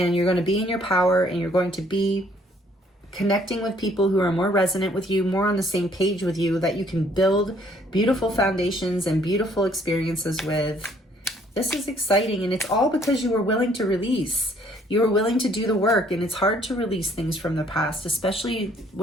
you're going to be in your power, and you're going to be connecting with people who are more resonant with you, more on the same page with you, that you can build beautiful foundations and beautiful experiences with. This is exciting, and it's all because you were willing to release. You were willing to do the work, and it's hard to release things from the past, especially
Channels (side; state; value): both; normal; correlation 0.62